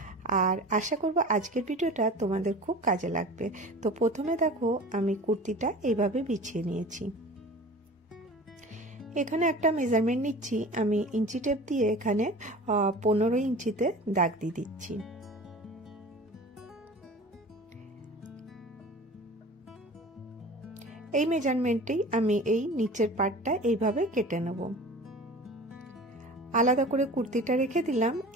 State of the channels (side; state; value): both; normal; correlation 0.39